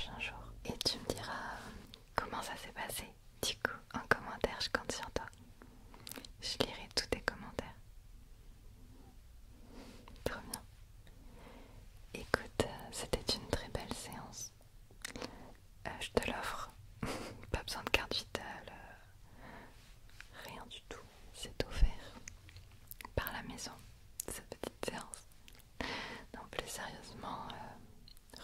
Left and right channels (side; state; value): both; identical; correlation 1.00